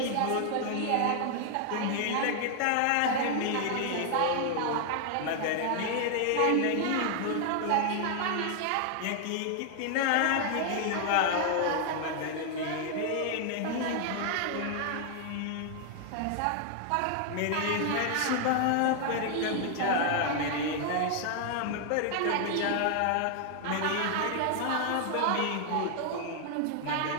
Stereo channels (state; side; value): different; both; correlation 0.00